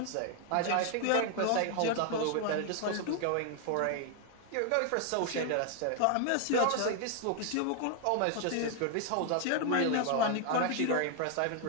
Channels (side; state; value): both; different; correlation 0.00